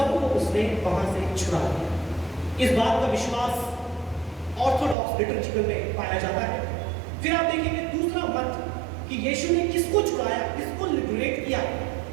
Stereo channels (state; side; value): drops out; left; at 5.0 s